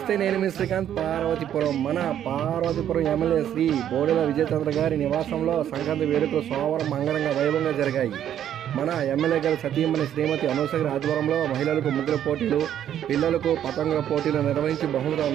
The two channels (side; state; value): left; quieter; 10.4 dB